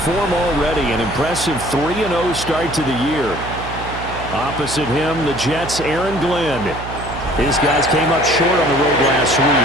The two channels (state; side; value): noise; right; hum, 10 dB below the sound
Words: form already, an impressive 3-0 start to the year. Opposite him, the Jets' Aaron Glenn. His guys came up short on the road last